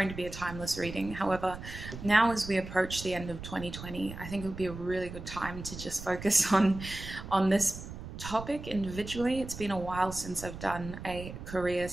to be a timeless reading. However, now as we approach the end of 2020, I think it would be a really good time to just focus on this topic individually. It's been a while since I've done a career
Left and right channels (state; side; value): noise; right; rumble, 11 dB below the sound